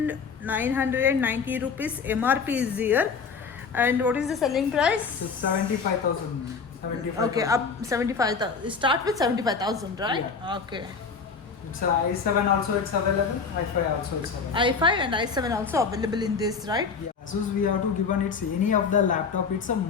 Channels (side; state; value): right; quieter; 5.4 dB